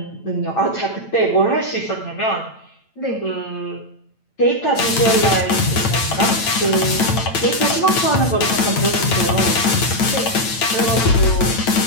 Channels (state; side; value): late; right; 8.9 ms